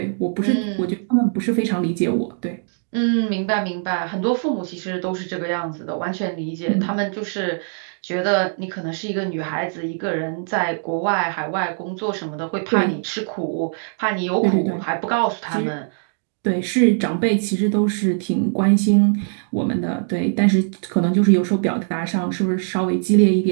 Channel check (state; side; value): silent; left; digital silence